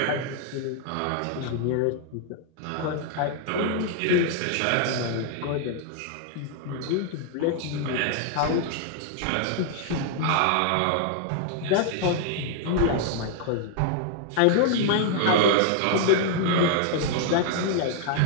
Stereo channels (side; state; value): both; different; correlation 0.00